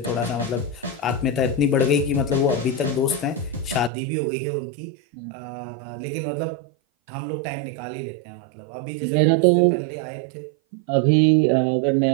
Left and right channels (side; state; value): left; drops out; at 3.9 s